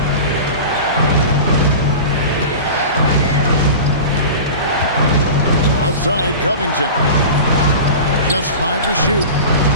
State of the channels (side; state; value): both; inverted; correlation -0.33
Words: Outside Covington. Just 5 to shoot.